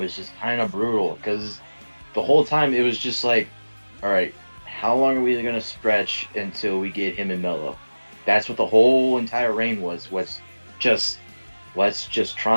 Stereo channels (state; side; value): inverted; both; correlation -1.00